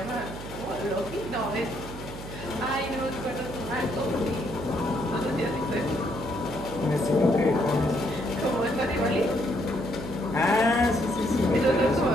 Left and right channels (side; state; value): right; noise; hum, 11 dB below the sound